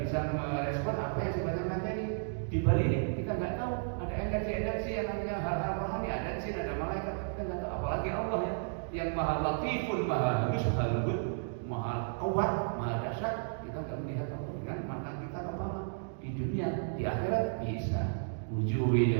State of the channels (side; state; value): left; silent; digital silence